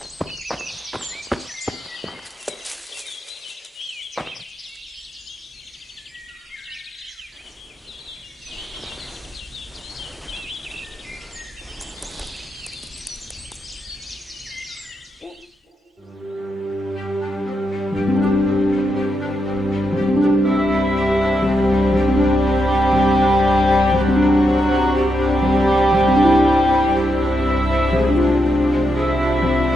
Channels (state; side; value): normal; both; correlation 0.83